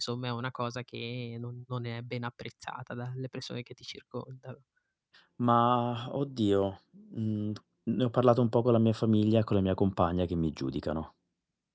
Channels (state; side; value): identical; both; correlation 1.00